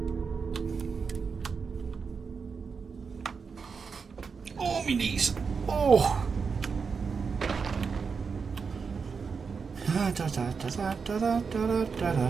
Oh, my knees. Oh.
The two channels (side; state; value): left; quieter; 5.5 dB